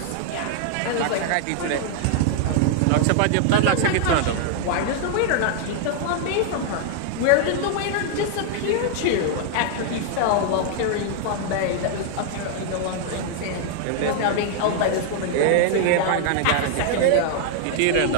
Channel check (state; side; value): different; both; correlation 0.00